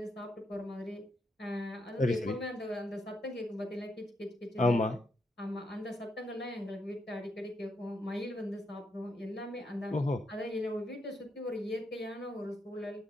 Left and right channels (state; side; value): normal; both; correlation 0.79